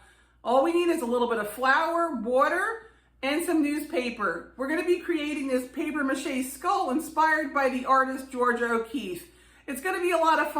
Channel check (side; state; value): both; identical; correlation 1.00